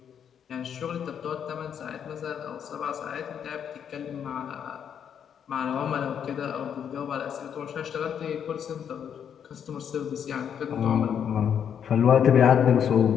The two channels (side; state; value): right; quieter; 8.3 dB